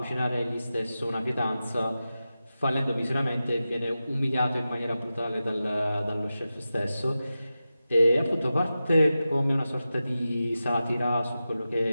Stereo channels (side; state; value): both; inverted; correlation -0.93